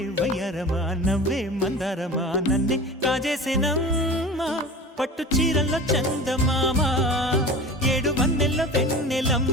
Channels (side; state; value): both; normal; correlation 0.36